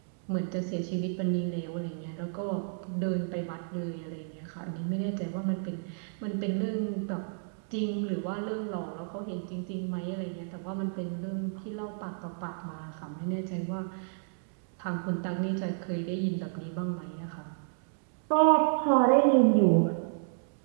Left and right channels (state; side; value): silent; left; digital silence